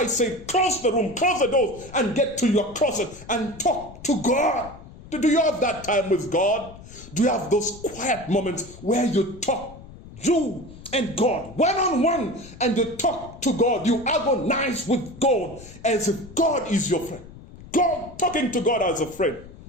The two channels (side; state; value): left; noise; rumble, 18 dB below the sound